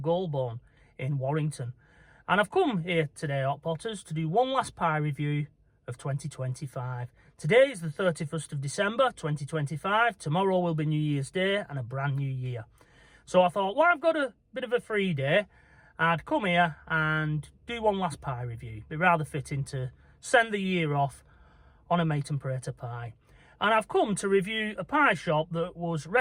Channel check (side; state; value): both; identical; correlation 1.00